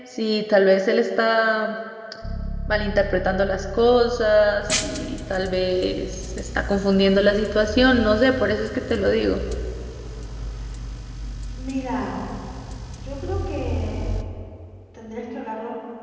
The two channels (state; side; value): identical; both; correlation 1.00